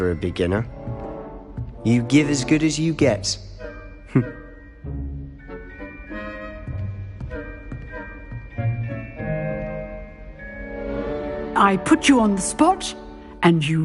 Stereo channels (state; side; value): identical; both; correlation 1.00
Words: a beginner. You give as good as you get. I put you on the spot, and